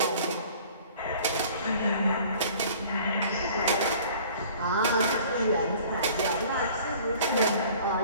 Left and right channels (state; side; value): inverted; both; correlation -0.50